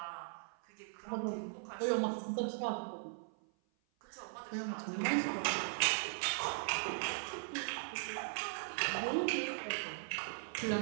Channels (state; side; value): silent; left; 52 dB below the other